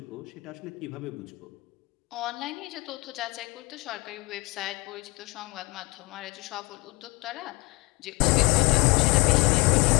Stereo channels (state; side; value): quieter; right; 25.2 dB